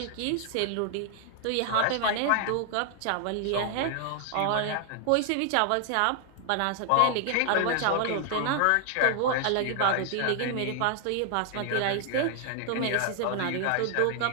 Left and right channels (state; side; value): different; both; correlation 0.00